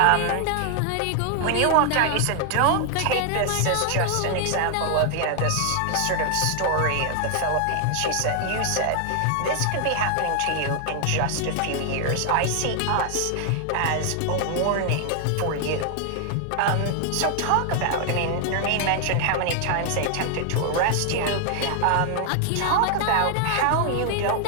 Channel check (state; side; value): different; both; correlation 0.00